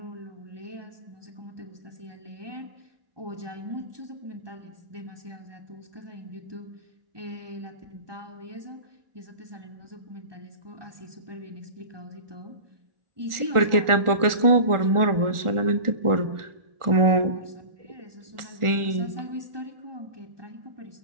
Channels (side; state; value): left; late; 1.4 ms